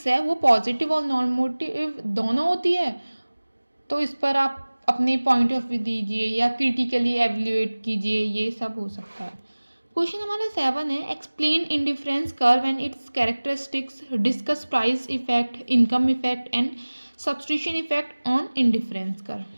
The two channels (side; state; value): both; inverted; correlation -1.00